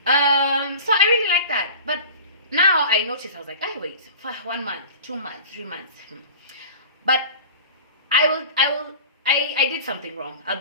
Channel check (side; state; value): both; inverted; correlation -0.37